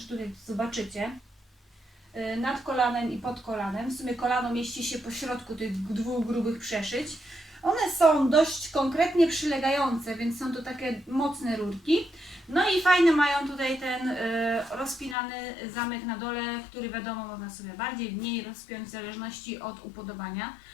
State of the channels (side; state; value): right; drops out; at 15.2 s